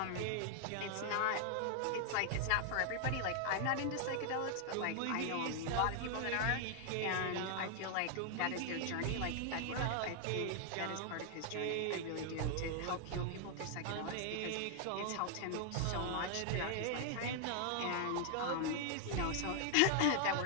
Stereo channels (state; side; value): different; both; correlation 0.00